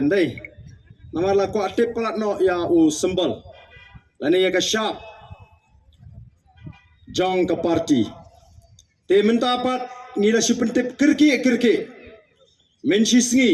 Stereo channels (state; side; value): identical; both; correlation 1.00